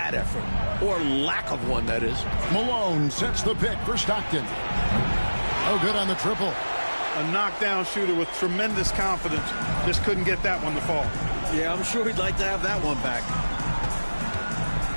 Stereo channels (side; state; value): both; inverted; correlation -1.00